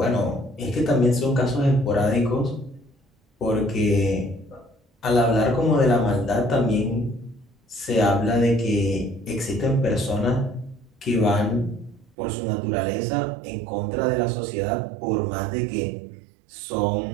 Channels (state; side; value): drops out; left; at 12.2 s